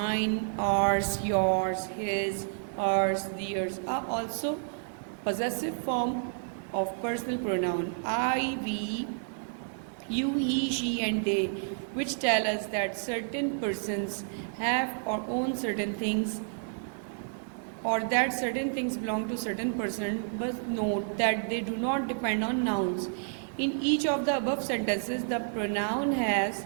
ours, yours, his, hers, theirs, are also possessive form of personal pronoun. I, we, you, he, she, and they, which tell us that certain persons have or own certain things, or that certain things belong to certain person, but note that they do not depend on nouns. In each of the above sentences, the pronoun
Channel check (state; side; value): silent; left; digital silence